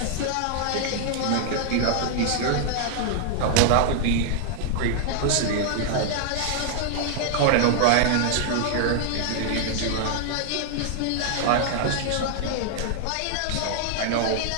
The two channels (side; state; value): both; different; correlation 0.00